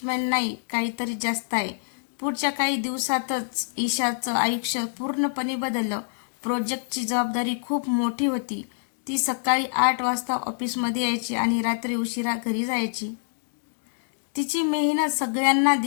नाही, काहीतरी जास्त आहे. पुढच्या काही दिवसातच ईशाचं आयुष्य पूर्णपणे बदललं. प्रोजेक्टची जबाबदारी खूप मोठी होती. ती सकाळी 8 वाजता ऑफिसमध्ये यायची आणि रात्री उशिरा घरी जायची. तिची मेहनत सगळ्यांना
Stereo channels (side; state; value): right; silent; digital silence